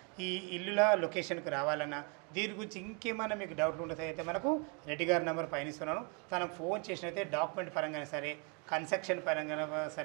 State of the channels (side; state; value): left; quieter; 35.1 dB